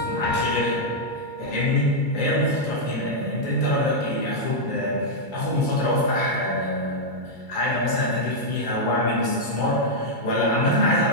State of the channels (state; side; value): late; right; 2.3 ms